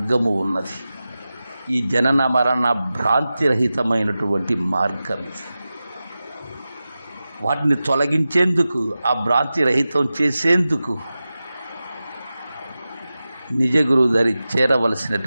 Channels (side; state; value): both; inverted; correlation -0.94